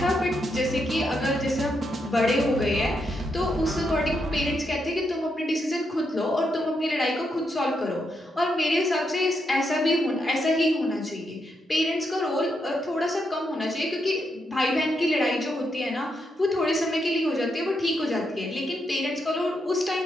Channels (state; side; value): normal; both; correlation 0.81